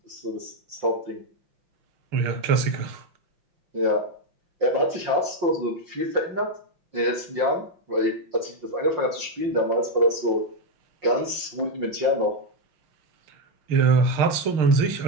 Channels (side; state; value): left; late; 5.6 ms